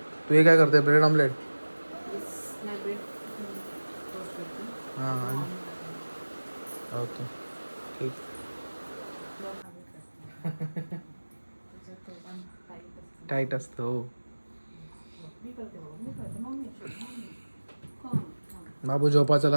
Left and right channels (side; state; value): both; inverted; correlation -1.00